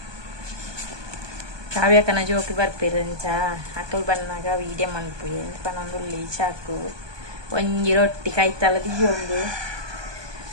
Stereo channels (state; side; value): late; left; 1.2 ms